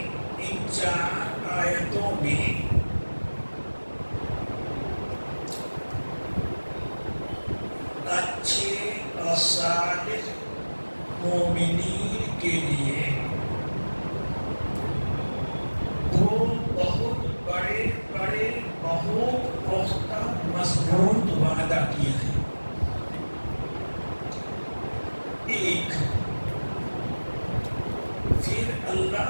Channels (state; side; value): inverted; both; correlation -1.00